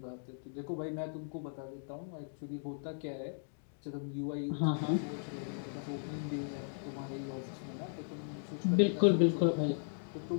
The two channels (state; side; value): silent; right; digital silence